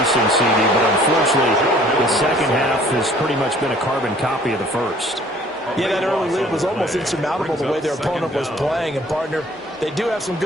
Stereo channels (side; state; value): both; normal; correlation 0.54